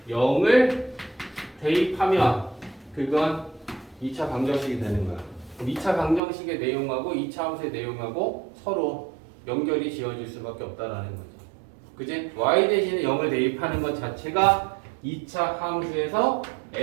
0을 대입하면 그건 2차 방정식이 되는 거야. 그럼 2차 방정식의 내용하고 2차 함수의 내용하고 서로 연결이 지어질 수밖에 없다라는 거죠. 그지? y 대신에 0을 대입하는 것 자체가 2차 함수에서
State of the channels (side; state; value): left; drops out; at 6.2 s